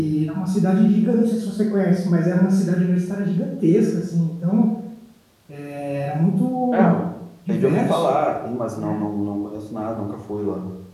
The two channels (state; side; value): identical; both; correlation 1.00